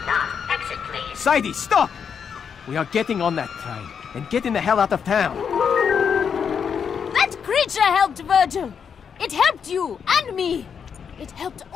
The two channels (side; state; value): right; quieter; 7.0 dB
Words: not exit, please. Sadie, stop! We are getting on that train and getting the hell out of town. creature helped Virgil. It helped you and me. It helped